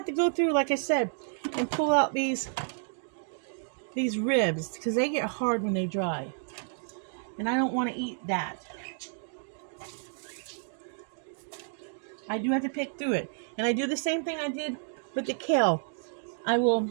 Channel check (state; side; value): silent; left; 56 dB below the other